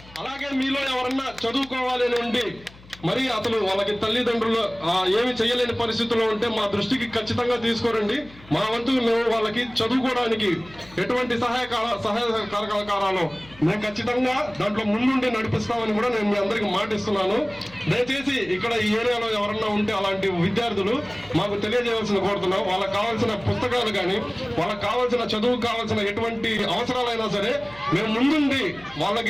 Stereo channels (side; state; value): left; noise; hum, 22 dB below the sound